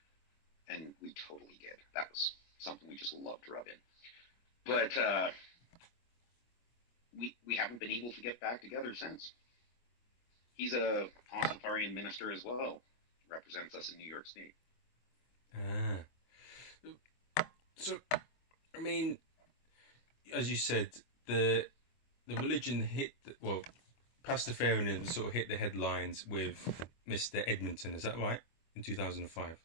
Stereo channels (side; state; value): right; late; 25 ms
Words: And we totally did. That was something we just loved to rub in. But we haven't been able to get back together since. He's a Pastafarian minister as well. Represents us in New York State. So, I mean, as you said, the religion hit... Pastafarianism sort of hit the headlines with Mr. Edmonton, is that right? In 2005?